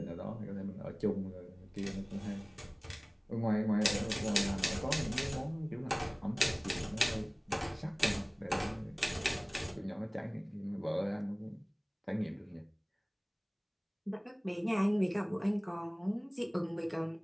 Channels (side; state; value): both; identical; correlation 1.00